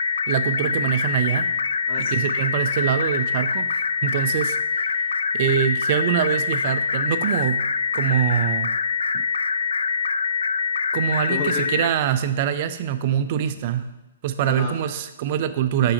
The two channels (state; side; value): inverted; both; correlation -0.53